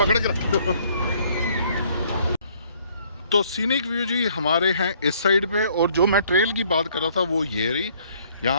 के रखो। तो सीनिक व्यू जी हमारे हैं इस साइड पे, और जो मैं ट्रेल की बात कर रहा था वो ये रही।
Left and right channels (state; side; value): inverted; both; correlation -0.62